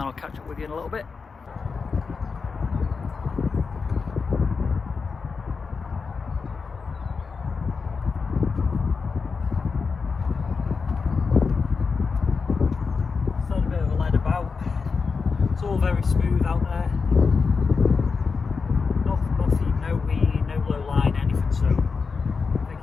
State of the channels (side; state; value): right; quieter; 5.0 dB